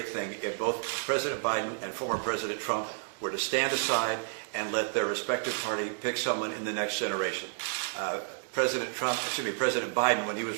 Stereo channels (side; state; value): left; silent; digital silence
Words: thing if both President Biden and former President Trump were to stand aside and let their respective party pick someone in the next generation. President Biden, when he